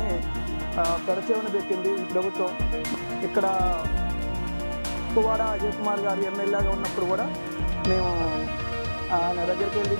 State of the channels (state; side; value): inverted; both; correlation -1.00